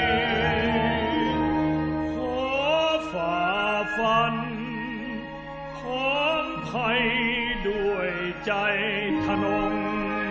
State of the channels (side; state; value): both; identical; correlation 1.00